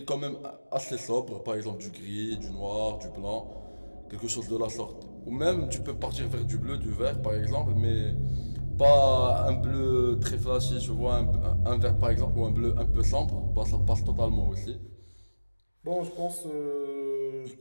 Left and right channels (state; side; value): inverted; both; correlation -1.00